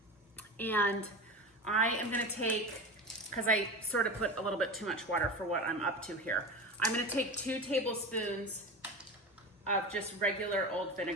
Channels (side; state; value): both; normal; correlation 0.27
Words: And I am gonna take, because I sort of put a little bit too much water for what I'm up to here, I'm gonna take 2 tablespoons of just regular old